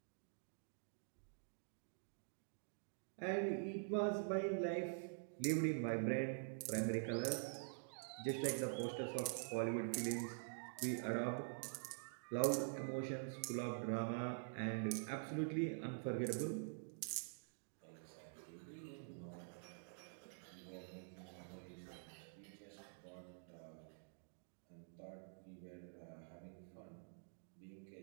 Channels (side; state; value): left; silent; digital silence